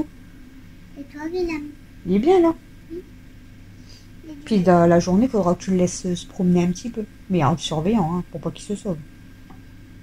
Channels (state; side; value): identical; both; correlation 1.00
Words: Et toi, Willem? Il est bien là. Oui. Puis dans la journée, il faudra que tu le laisses se promener un petit peu. Mais en le surveillant, hein, pour pas qu'il se sauve.